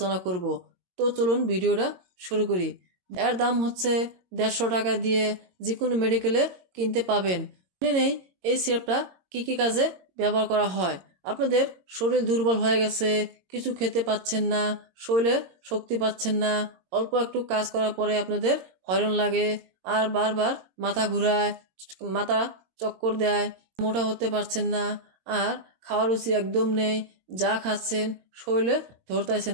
করব। তো চলুন ভিডিওটা শুরু করি। এর দাম হচ্ছে 150 টাকা দিয়ে যে কোনো মেডিকেলে কিনতে পাবেন। জেনে নেই এই সিরাপটা কি কি কাজে ব্যবহার করা হয়। আপনাদের শরীর দুর্বল হয়ে গেছে, কিছু খেতে পাচ্ছেন না, শরীরে শক্তি পাচ্ছেন না, অল্প একটু কাজ করার পরে আপনাদের হয়রান লাগে, আর বারবার মাথা ঘুরায়, মাথা চক্কর দেয়, মোটা হতে পারছেন না, আর খাওয়ার রুচি একদম নেই, যা খাচ্ছেন শরীরে ধরতেছে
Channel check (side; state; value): left; late; 22 ms